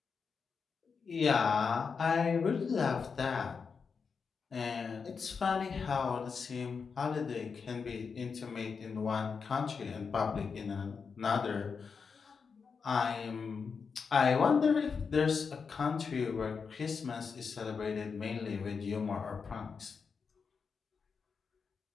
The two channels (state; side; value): quieter; right; 5.6 dB